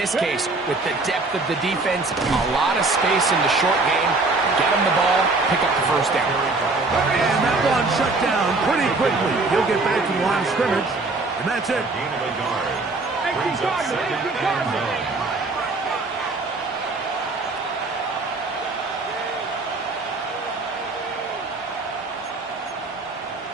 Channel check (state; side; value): quieter; left; 3.4 dB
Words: case, with the depth of the defense, a lot of space in the short game, get him the ball, pick up the first down. And that one shut down pretty quickly. He'll get back to the line of scrimmage, and that's it. Gain of a yard. Brings up second and 9.